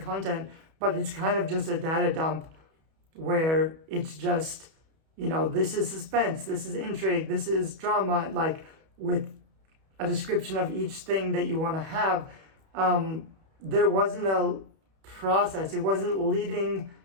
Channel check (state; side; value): late; left; 31 ms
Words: but it's kind of just a data dump where it's just, this is suspense, this is intrigue, this is drama, like with a description of each thing that you want to have. There wasn't a process. It wasn't leading